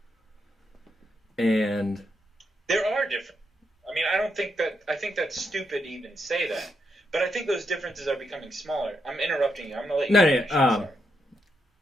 And there are different. I mean, I think that's stupid to even say that. But I think those differences are becoming smaller. I'm interrupting you. I'm gonna let you finish. No.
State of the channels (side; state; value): both; normal; correlation 0.81